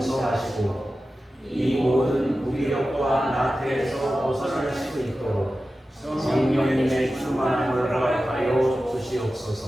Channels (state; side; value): normal; both; correlation 0.94